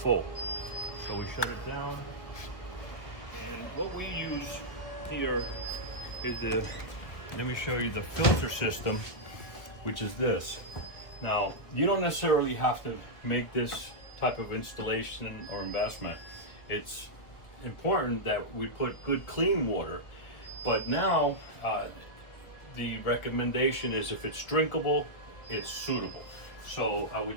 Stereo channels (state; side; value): late; right; 1.7 ms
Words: So we shut it down. And what we use here is let me show you the filter system, which is this. Now, you don't necessarily have to make this type of installation or investment. It's important that we put good clean water, but now the recommendation is if it's drinkable, it's suitable. So I